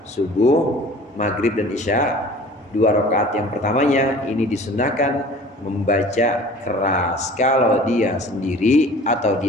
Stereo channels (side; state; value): both; normal; correlation 0.45